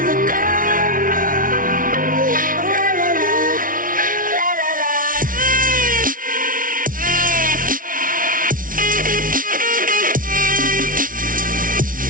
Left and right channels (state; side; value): late; left; 0.39 ms